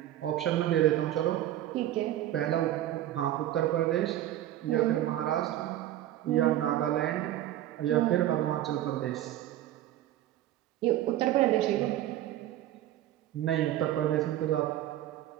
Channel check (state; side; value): quieter; left; 13.3 dB